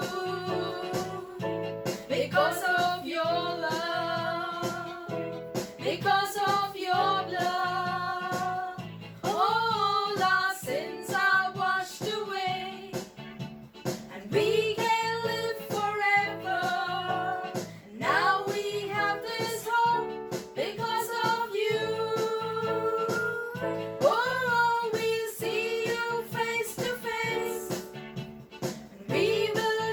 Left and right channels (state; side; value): identical; both; correlation 1.00